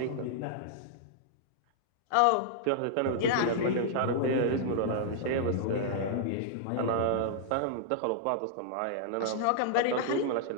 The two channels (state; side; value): different; both; correlation -0.01